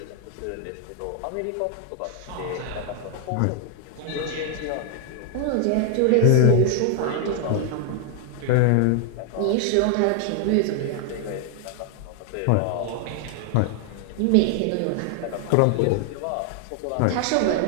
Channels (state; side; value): different; both; correlation 0.00